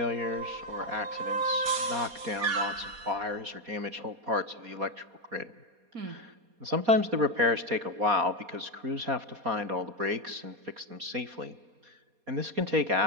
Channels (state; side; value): late; left; 4.2 ms